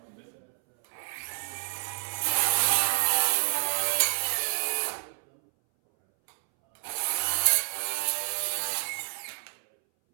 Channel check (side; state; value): left; silent; 59 dB below the other